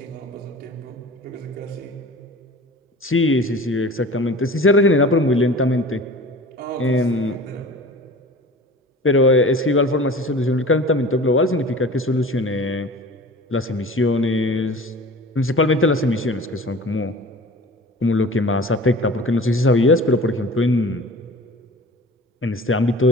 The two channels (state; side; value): normal; both; correlation 0.40